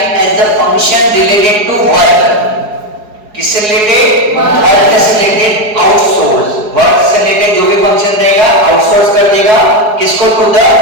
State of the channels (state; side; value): late; left; 4.7 ms